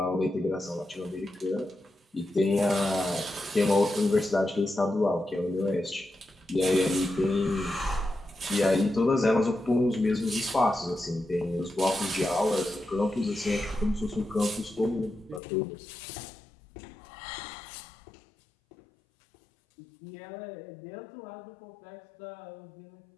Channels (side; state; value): right; drops out; at 15.4 s